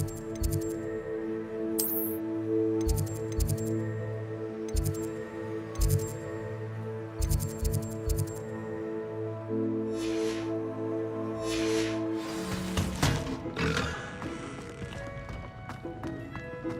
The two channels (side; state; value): both; identical; correlation 1.00